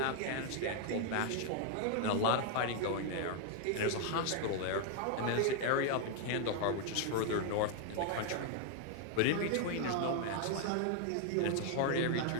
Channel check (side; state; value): both; different; correlation 0.00